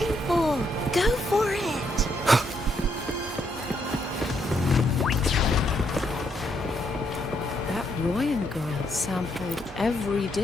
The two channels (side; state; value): both; normal; correlation 0.75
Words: waiting for? Go for it. That Royan girl sampled every